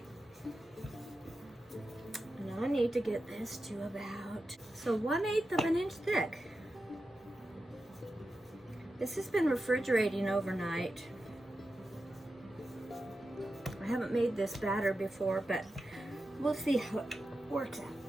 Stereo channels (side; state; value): both; normal; correlation 0.91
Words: I need to get this to about, so 1/8 of an inch thick. This has been refrigerating overnight. I haven't made this batter before, but we'll see how it works out.